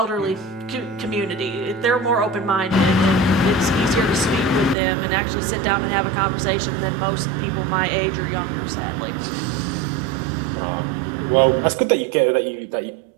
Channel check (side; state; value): left; drops out; at 4.8 s